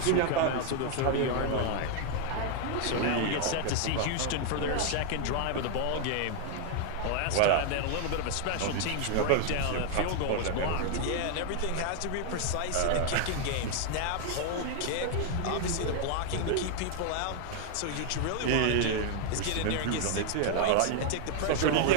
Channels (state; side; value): different; both; correlation 0.00